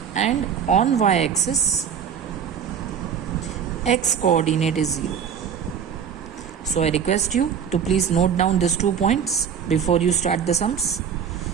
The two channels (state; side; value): quieter; left; 7.6 dB